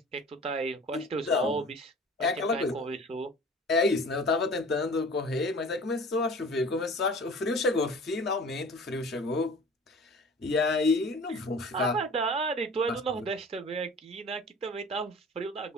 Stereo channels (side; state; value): both; normal; correlation 0.43